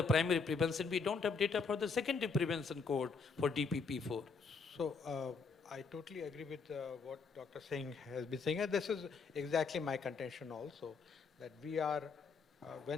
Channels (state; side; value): quieter; right; 4.8 dB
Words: primary prevention. We don't have data for the secondary prevention cohort for DPP4. So I totally agree with what Dr. Singh has been saying. And this is exactly my contention also, that we are,